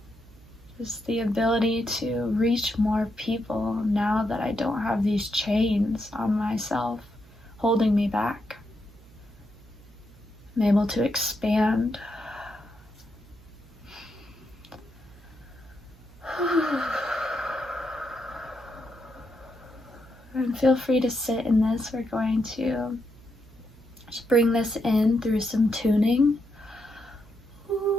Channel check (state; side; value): noise; right; hum, 23 dB below the sound